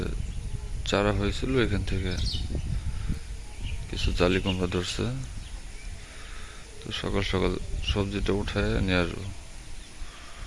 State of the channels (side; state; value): both; identical; correlation 1.00